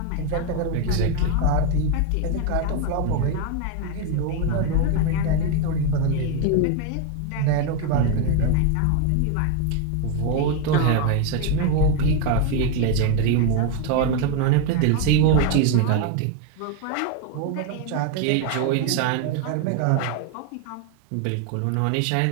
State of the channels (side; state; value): both; different; correlation 0.01